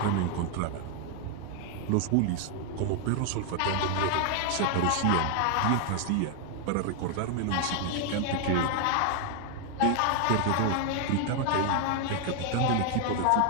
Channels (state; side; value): different; both; correlation 0.00